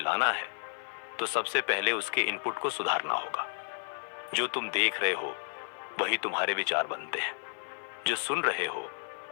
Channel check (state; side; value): silent; right; 56 dB below the other